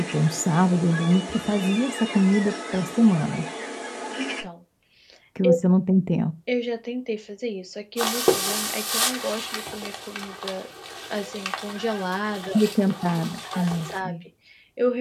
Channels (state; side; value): identical; both; correlation 1.00